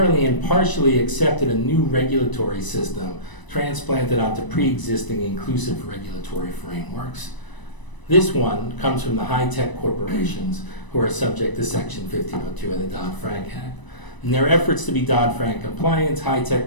and partially accepted a new regulatory system transplanted onto pre-existing inclusive regulatory frameworks. This one comes from the high-tech corporations who are subject to Section 1502 of the Dodd-Frank Act. In their efforts to be Dodd-Frank compliant,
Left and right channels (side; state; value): right; late; 1.0 ms